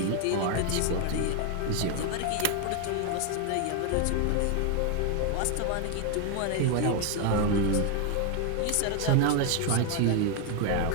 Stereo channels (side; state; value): both; different; correlation 0.01